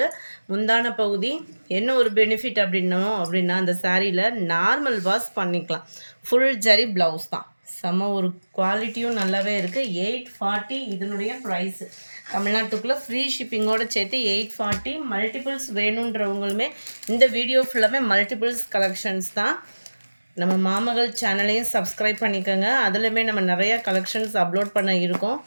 முந்தான பகுதி என்ன ஒரு பெனிஃபிட் அப்படின்னா அந்த சாரியில் நார்மல் வாஷ் பண்ணிக்கலாம். ஃபுல் ஜரி ப்ளவுஸ் தான். செம ஒரு குவாலிட்டியும் நல்லாவே இருக்குது. 840 இதனுடைய ப்ரைஸு. தமிழ்நாட்டுக்குள்ளே ஃப்ரீ ஷிப்பிங்கோடு சேர்த்து 840. மல்டிபிள்ஸ் வேணுன்றவங்களுமே இந்த வீடியோ ஃபுல்லாமே மல்டிபிள்ஸ் கலெக்ஷன்ஸ் தான். நம்ம மாமகள் சேனலையும் சப்ஸ்கிரைப் பண்ணிக்கோங்க. அதுலேயுமே நம்ம நிறையா கலெக்ஷன்ஸ் அப்லோட் பண்ண இருக்கோம்.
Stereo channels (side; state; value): both; inverted; correlation -1.00